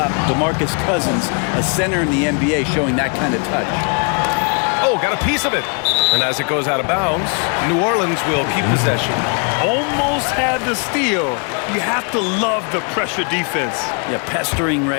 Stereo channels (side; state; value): right; quieter; 38.4 dB